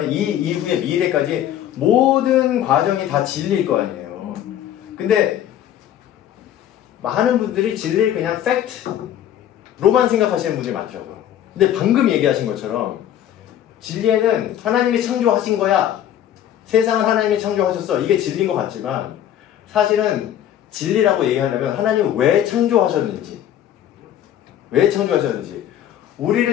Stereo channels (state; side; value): quieter; right; 11.0 dB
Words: 이 이후의 미래까지 모든 과정이 다 진리일 거 아니에요. 근데 많은 분들이 진리를 그냥 팩트로만 생각하시는 분들이 많더라고요. 근데 방금 얘기하신 것처럼 진리에는 하나님이 창조하신 거야. 세상을 하나님이 창조하셨어. 이게 진리인 것 같지만 사실은 진리라고 얘기하려면 하나님은 왜 창조하셨는지